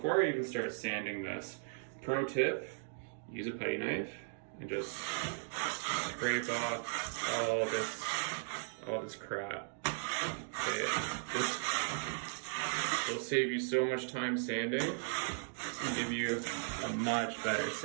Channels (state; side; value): silent; left; digital silence